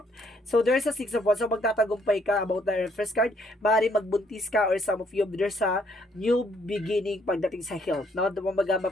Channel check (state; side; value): normal; both; correlation 0.68